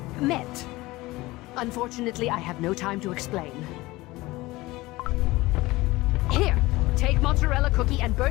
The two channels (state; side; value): quieter; right; 19.9 dB